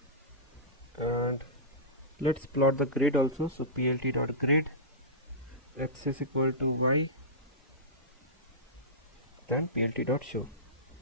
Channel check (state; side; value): normal; both; correlation -0.17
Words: and let's plot the grid also. So plt.grid x is equal to y, then plt.show.